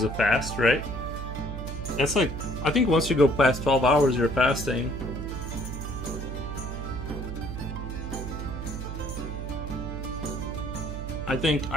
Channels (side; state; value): right; noise; hum, 6 dB below the sound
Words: a fast, right? That's like, I think once you go past 12 hours you're fasting. I